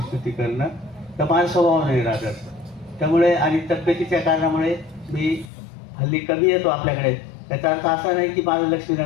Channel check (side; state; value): right; drops out; at 5.5 s